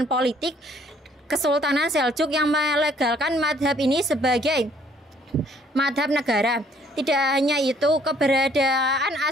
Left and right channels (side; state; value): both; normal; correlation 0.62